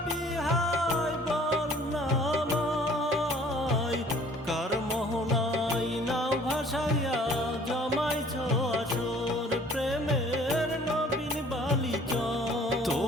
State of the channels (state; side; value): normal; both; correlation 0.54